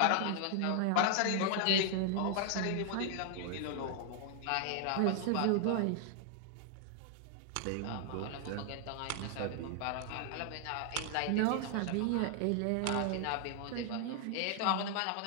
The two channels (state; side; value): different; both; correlation 0.00